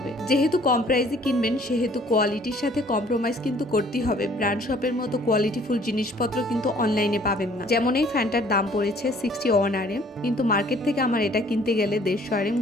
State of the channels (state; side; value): normal; both; correlation 0.57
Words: যেহেতু কম প্রাইসে কিনবেন সেহেতু কোয়ালিটির সাথে কম্প্রোমাইজ কিন্তু করতেই হবে। ব্র্যান্ড শপের মতো কোয়ালিটিফুল জিনিসপত্র কিন্তু অনলাইনে পাবেন না। যেমন এই ফ্যানটার দাম পড়েছে 61 RM, কিন্তু মার্কেট থেকে আমার এটা কিনতে গেলে 150 RM